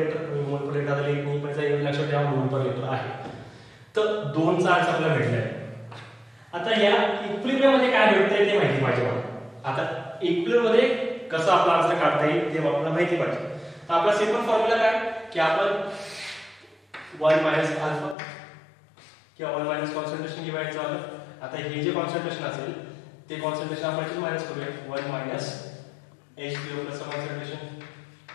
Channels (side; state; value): right; drops out; at 18.2 s